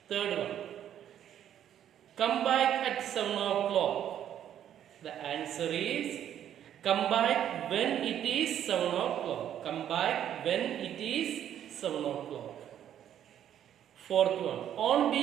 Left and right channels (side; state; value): left; quieter; 10.4 dB